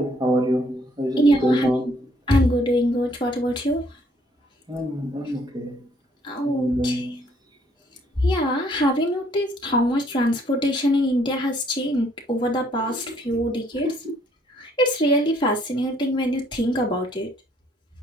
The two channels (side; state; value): both; normal; correlation 0.65